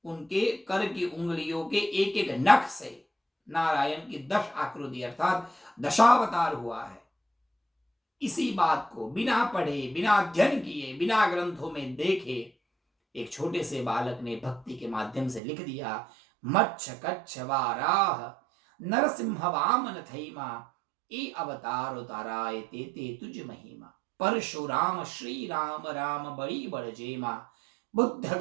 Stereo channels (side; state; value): left; drops out; at 15.4 s